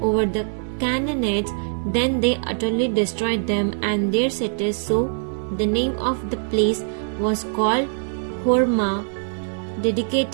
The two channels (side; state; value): left; silent; 64 dB below the other